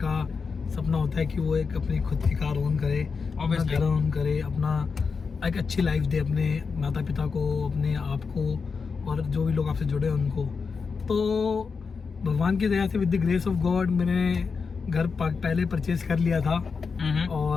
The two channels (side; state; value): right; quieter; 5.2 dB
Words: का सपना होता है कि वो एक अपनी खुद की कार ओन करे, अपना घर ओन करे, अपना एक अच्छी लाइफ दे अपने माता पिता को, अपने आप को और जो भी लोग आपसे जुड़े हैं उनको। तो भगवान की दया से with the grace of God मैंने घर पहले परचेज कर लिया था